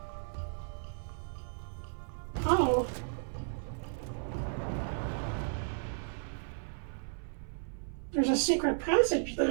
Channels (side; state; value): left; silent; 55 dB below the other